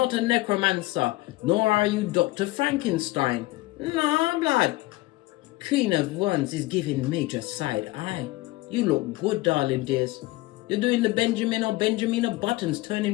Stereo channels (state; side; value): quieter; right; 19.9 dB